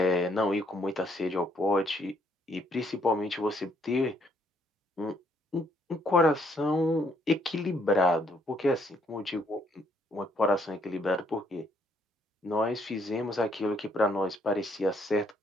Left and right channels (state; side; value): normal; both; correlation 0.69